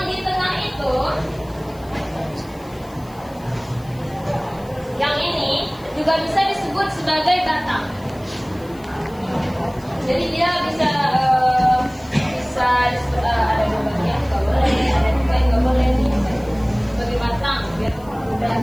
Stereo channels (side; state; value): left; noise; hiss, 25 dB below the sound